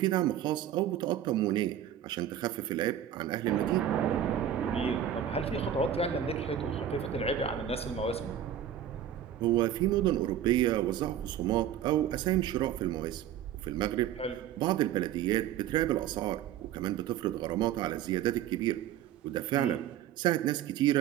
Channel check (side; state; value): left; quieter; 10.4 dB